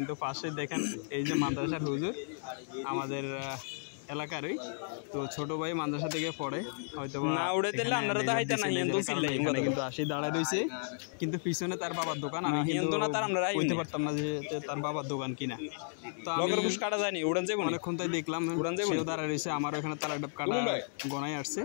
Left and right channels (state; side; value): silent; right; digital silence